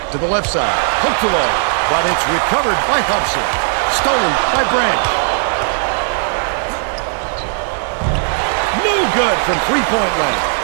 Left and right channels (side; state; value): left; silent; digital silence